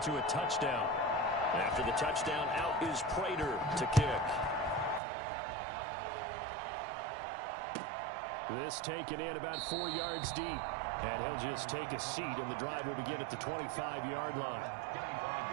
a touchdown. After the touchdown, out is Prater to kick. This taken in about 4 yards deep. And he'll just take a seat, and the drive will begin at the 25-yard line.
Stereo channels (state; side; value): drops out; left; at 5.0 s